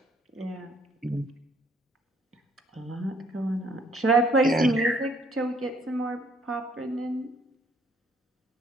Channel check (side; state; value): both; normal; correlation 0.64